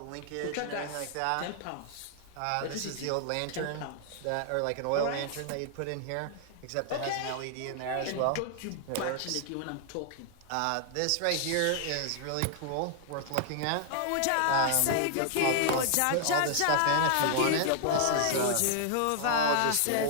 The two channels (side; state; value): both; different; correlation -0.01